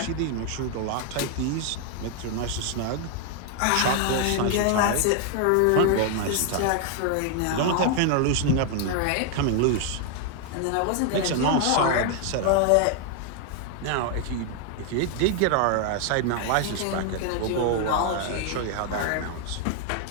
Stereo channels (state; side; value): different; both; correlation 0.00